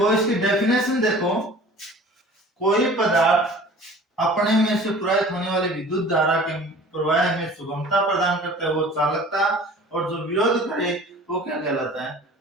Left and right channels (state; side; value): normal; both; correlation 0.45